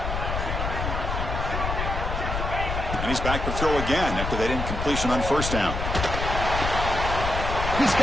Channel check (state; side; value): noise; left; rumble, 3 dB below the sound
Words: And he's back to throw again after that incompletion on first down. He's